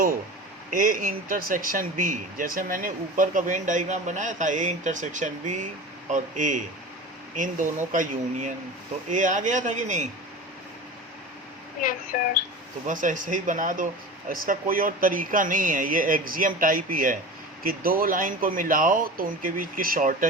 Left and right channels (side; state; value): both; normal; correlation 0.32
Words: ए इंटरसेक्शन बी, जैसे मैंने ऊपर का वेन डायग्राम बनाया था, ए इंटरसेक्शन बी और ए, इन दोनों का यूनियन, तो ए आ गया था कि नहीं? Yes sir. तो बस ऐसे ही बना दो, इसका कोई और तरीका नहीं है, ये एक्सियम टाइप ही है कि दो लाइन को मिलाओ तो उनके बीच की